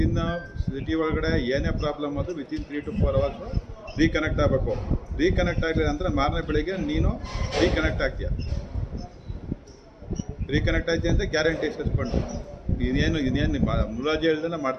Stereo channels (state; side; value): identical; both; correlation 1.00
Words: ಸಿಟಿ ಒಳಗಡೆ ಏನೇ ಪ್ರಾಬ್ಲಮ್ ಅದು ವಿತಿನ್ 3 to 4 hours ರೀಕನೆಕ್ಟ್ ಆಗಬೇಕು. ರೀಕನೆಕ್ಟ್ ಆಗಲಿಲ್ಲ ಅಂದರೆ ಮಾರನೇ ಬೆಳಿಗ್ಗೆ ನೀನು ರೀಕನೆಕ್ಟ್ ಆಗ್ತೀಯ. ರೀಕನೆಕ್ಟ್ ಆಯ್ತು ಅಂತ ಗ್ಯಾರಂಟಿ ಸಸ್ಪೆಂಡು. ಇನ್ನೇನು ಮುಲಾಜಿ ಹೇಳ್ದೆಲ್ಲ